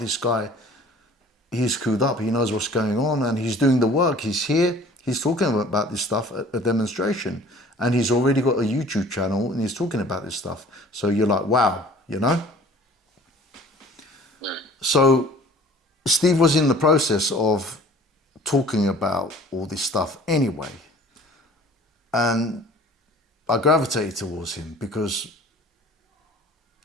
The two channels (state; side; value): normal; both; correlation 0.49